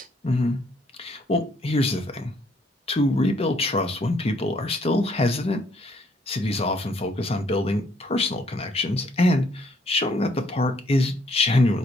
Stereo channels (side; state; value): both; normal; correlation 0.67